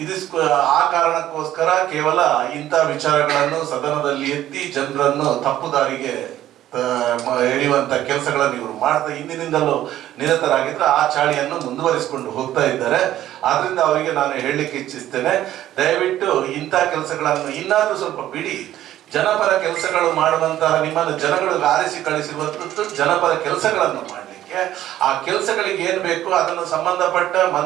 ಆ ಕಾರಣಕ್ಕೋಸ್ಕರ ಕೇವಲ ಇಂಥ ವಿಚಾರಗಳನ್ನು ಸದನದಲ್ಲಿ ಎತ್ತಿ ಜನರನ್ನು ತಪ್ಪು ದಾರಿಗೆ ಎಳೆಯುವಂತ ಕೆಲಸಗಳನ್ನು ಇವರು ಮಾಡ್ತಾ ಹಿಂದಿನಿಂದಲೂ ನಿರತರಾಗಿದ್ರೆ ಆ ಚಾಳಿಯನ್ನು ಮುಂದುವರಿಸಿಕೊಂಡು ಹೋಗ್ತಾ ಇದ್ದಾರೆ. ಆದ್ರಿಂದ ಅವರಿಗೆ ನಾನು ಹೇಳಲಿಕ್ಕೆ ಇಚ್ಛಿಸ್ತೇನೆ, ದಯವಿಟ್ಟು ಇಂಥ ಕೆಲಸಗಳನ್ನು ಇನ್ನಾದ್ರೂ ಸ್ವಲ್ಪ ಬಿಡಿ. ಜನಪರ ಕೆಲಸಗಳು ಮಾಡುವಂತಹ ನಿಮ್ಮನ್ನು ಜನಗಳು ಆರಿಸಿ ಕಳಿಸಿರುವಂಥದ್ದು ಜನಪರ ಕೆಲಸಗಳನ್ನು ಮಾಡಲಿಕ್ಕೆ. ಆ ಕೆಲಸಗಳಿಗೆ ಏನ್ ಬೇಕು ಅದನ್ನು ಸಂಬಂಧಪಟ್ಟ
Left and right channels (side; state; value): left; quieter; 12.9 dB